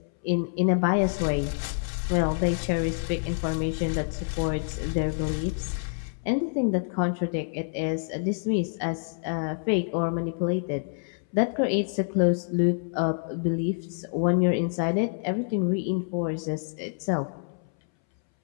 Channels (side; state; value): right; silent; 60 dB below the other